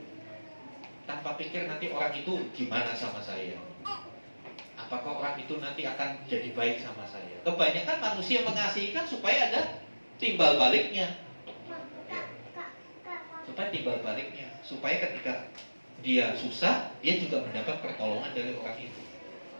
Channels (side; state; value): both; inverted; correlation -1.00